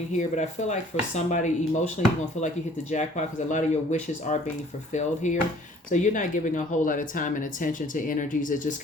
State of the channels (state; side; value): normal; both; correlation 0.55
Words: here. But I feel like for somebody emotionally, you're going to feel like you hit the jackpot because a lot of your wishes are being fulfilled here. So you're not giving a whole lot of time and attention to energies that just